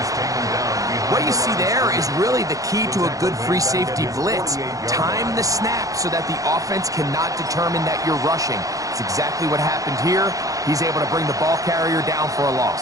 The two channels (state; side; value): late; left; 0.17 ms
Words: taken down behind What you see there is really the key to a good free safety blitz. Time the snap so that the offense cannot determine that you're rushing. It's exactly what happened here. He's able to bring the ball carrier down for a